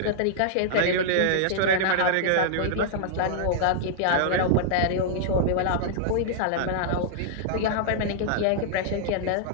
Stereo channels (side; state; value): both; different; correlation -0.01